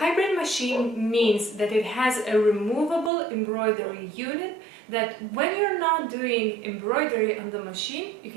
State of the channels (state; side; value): drops out; left; at 3.1 s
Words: machine means that it has a removable embroidery unit that when you're not doing embroidery on the machine, you